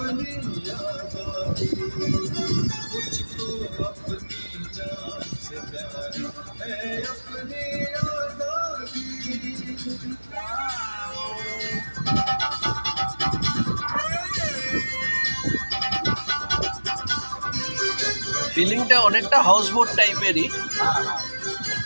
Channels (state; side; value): inverted; both; correlation -1.00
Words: आजादी, मुझको अपनी जान से प्यारी है अपनी आजादी। ফিলিংটা অনেকটা হাউস বোট টাইপেরই।